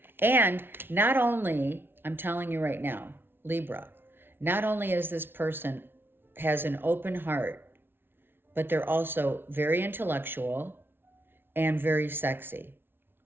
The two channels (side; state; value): left; late; 0.11 ms